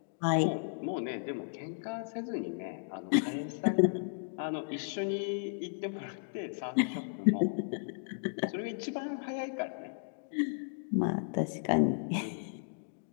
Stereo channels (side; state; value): right; silent; digital silence